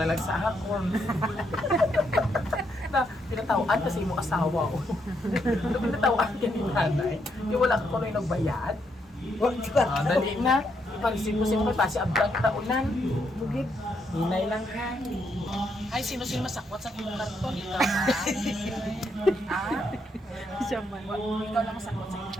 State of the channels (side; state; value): both; normal; correlation 0.77